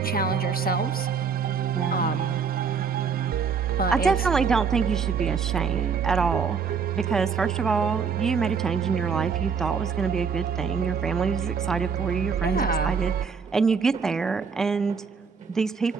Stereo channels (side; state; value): left; quieter; 5.8 dB